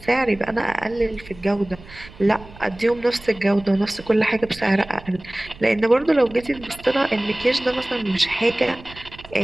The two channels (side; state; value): right; noise; rumble, 20 dB below the sound